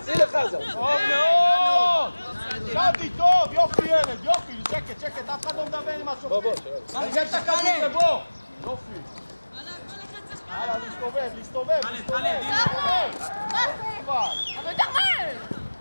שים לחזן! טוב מאוד! שדי טוב! יופי ילד, יופי! שקט, אף אחד לא מדבר עם משהו. בוא, תרגל את הכדור לבוא! יופי! הלאה, להסתובב!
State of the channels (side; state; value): both; inverted; correlation -1.00